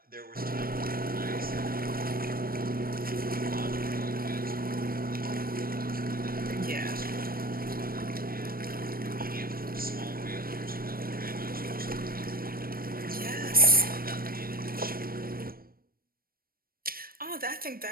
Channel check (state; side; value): late; left; 0.43 ms